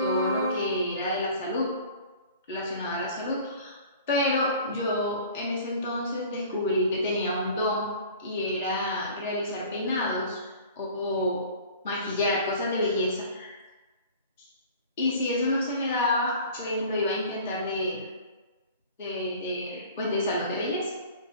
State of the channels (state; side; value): inverted; both; correlation -0.45